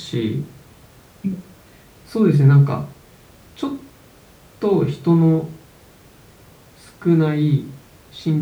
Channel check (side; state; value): both; identical; correlation 1.00